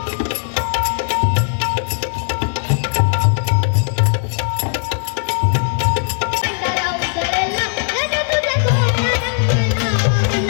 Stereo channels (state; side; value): silent; right; 66 dB below the other